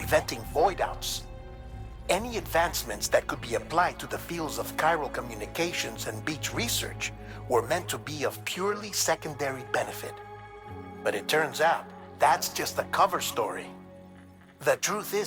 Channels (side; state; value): both; identical; correlation 1.00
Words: void-outs. Any advancements that could be applied to the fields of chiral communications and beach research were meant to be of purely secondary benefit. But it turns out, that's just the cover story. The truth is,